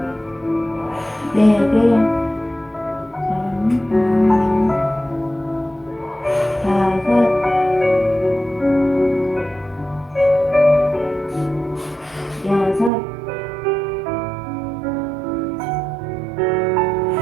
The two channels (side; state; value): left; drops out; at 12.9 s